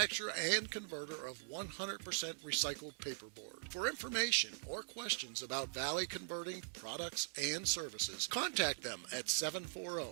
and converter of 100% recycled paperboard. For information or questions about Valley Converting products and services, contact them at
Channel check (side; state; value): left; silent; digital silence